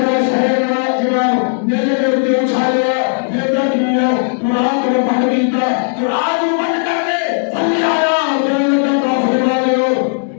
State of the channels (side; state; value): right; silent; digital silence